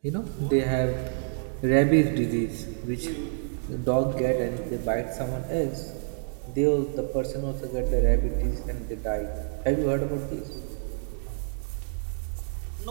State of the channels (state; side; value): silent; left; digital silence